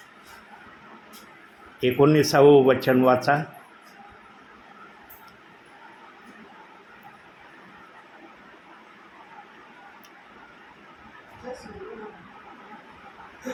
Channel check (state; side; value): identical; both; correlation 1.00